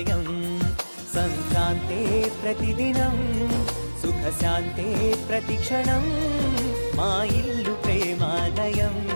సంక్రాంతే ప్రతిదినం, సుఖశాంతే ప్రతిక్షణం, మా ఇల్లు ప్రేమాలయం,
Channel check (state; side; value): inverted; both; correlation -1.00